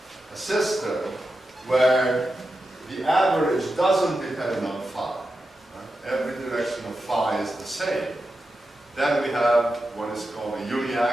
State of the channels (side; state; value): both; normal; correlation 0.90